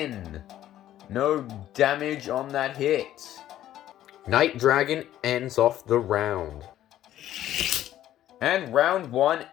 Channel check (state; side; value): quieter; right; 12.6 dB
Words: No damage on that hit. Night Dragon ends off the round. And round 1